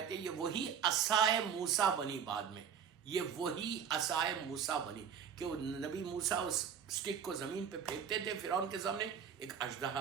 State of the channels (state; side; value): quieter; left; 7.6 dB